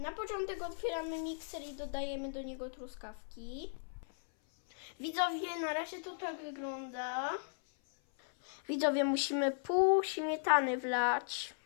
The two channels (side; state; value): right; silent; 53 dB below the other